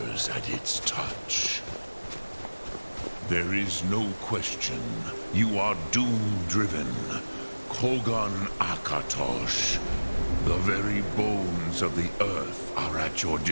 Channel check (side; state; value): both; inverted; correlation -1.00